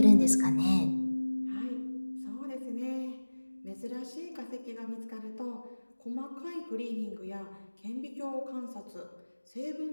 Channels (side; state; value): both; inverted; correlation -1.00